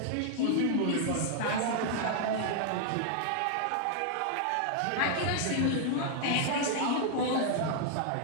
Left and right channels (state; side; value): different; both; correlation 0.00